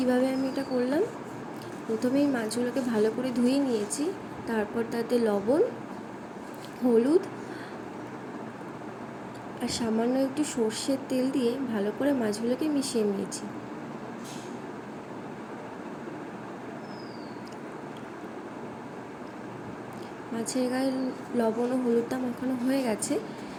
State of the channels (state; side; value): identical; both; correlation 1.00